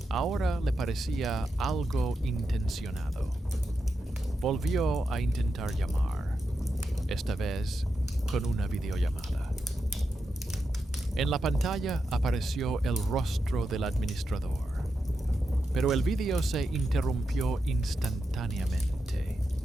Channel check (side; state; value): both; normal; correlation 0.87